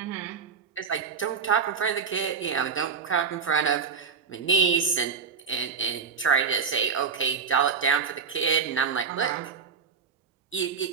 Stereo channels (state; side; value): quieter; left; 6.0 dB